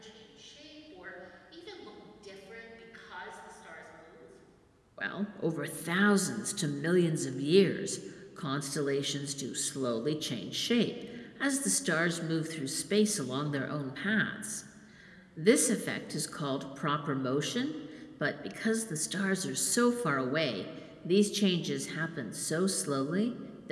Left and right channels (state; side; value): identical; both; correlation 1.00